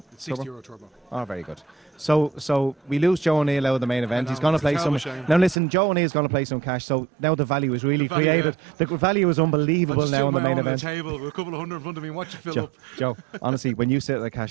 It's €60 turbo. Oh, very good. So we lose Joe O'Neill out of the main event. know, He's going to it's a play terrible some. shame. Now listen, Joe O'Neill's going to play some cash. So now the value is really The value, created. The value is unbelievable now in the main on event. the table with a couple of hundred in front of me. Watch it fill up. Joe, honestly, when you sit at the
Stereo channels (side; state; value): left; drops out; at 5.6 s